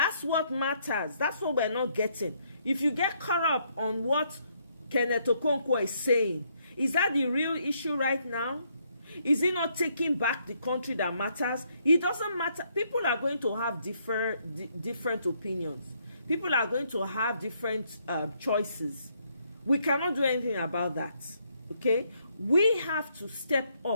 what matters. That's what we're not getting. If you get caught up on what Kenneth Okonkwo is saying, is that the real issue right now? Is he not taking back the country that matters? It doesn't matter. People are going to have different opinions. People are going to have different choices. We cannot do anything about that. Okay? We have to step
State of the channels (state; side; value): inverted; both; correlation -0.72